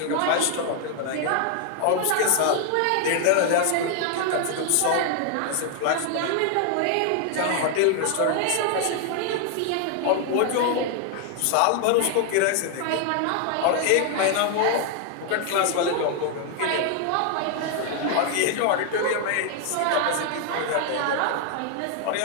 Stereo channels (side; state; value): both; different; correlation 0.00